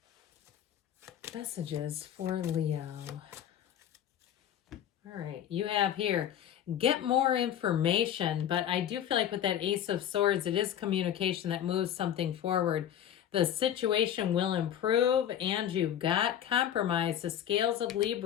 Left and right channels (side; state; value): right; quieter; 10.4 dB